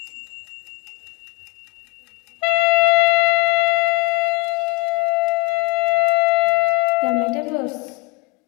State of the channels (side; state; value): right; quieter; 29.0 dB